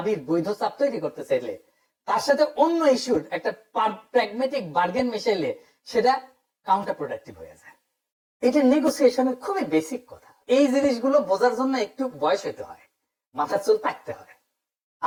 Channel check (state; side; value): identical; both; correlation 1.00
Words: বৈধ চাপ তৈরি করতে চাইলে তার সাথে অন্য ইস্যুর একটা প্র্যাগমেটিক বার্গেন মিশাইলে সেটা কাউন্টার প্রোডাক্টিভ হয়ে যায়। এটা নেগোসিয়েশনের খুবই বেসিক কথা। এই জিনিসগুলো বোঝার জন্য একটু বয়স হইতে হয়, মাথার চুল পাকতে হয়।